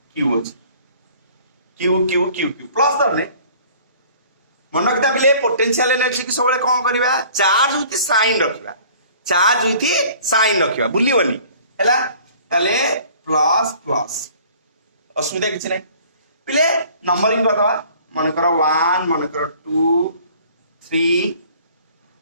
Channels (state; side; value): inverted; both; correlation -0.51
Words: q अछि q q q q plus दरने मन रखता बिले पोटेंशियल एनर्जी की सबले कोन करबा चार्ज विथ साइन रखबा चार्ज विथ साइन रखबा बुलिवनी हैला तले प्लस प्लस असुविधा किछ नै पिले नंबरिंग बतावा मन करो 1 मन करो 2 3